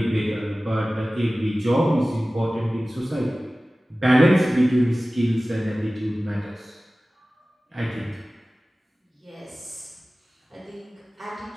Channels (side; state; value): both; normal; correlation 0.97